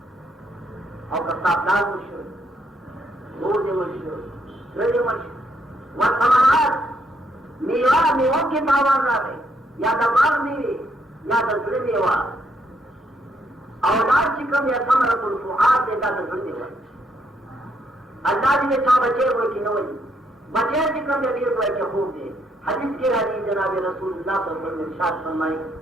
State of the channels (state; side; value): normal; both; correlation 0.74